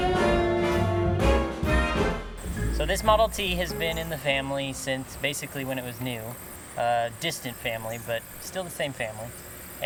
So this Model T has been in the family since basically when it was new. Distant family, but still the same family.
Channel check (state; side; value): identical; both; correlation 1.00